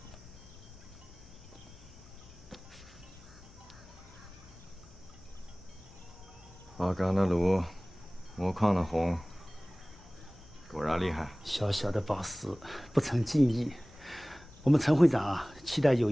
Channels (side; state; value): left; noise; hum, 24 dB below the sound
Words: 花岗的炉，木矿的红，果然厉害。小小的宝石，不成敬意。我们陈会长啊，期待有